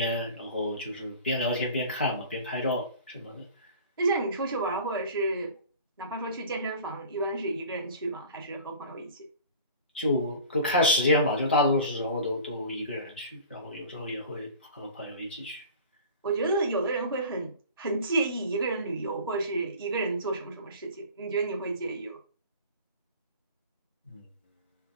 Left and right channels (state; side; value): inverted; both; correlation -0.41